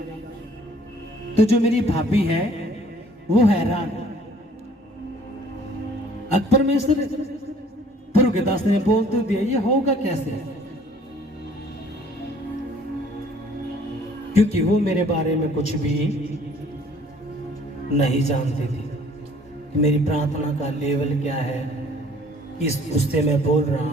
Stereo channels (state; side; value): normal; both; correlation 0.56